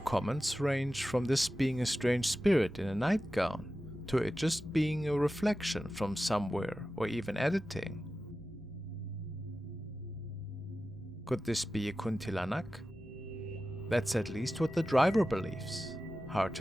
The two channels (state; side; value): normal; both; correlation 0.94